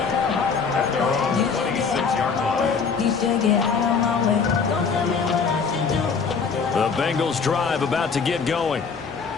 At their own 26-yard line. The Bengals drive about to get going.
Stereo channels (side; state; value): right; quieter; 5.5 dB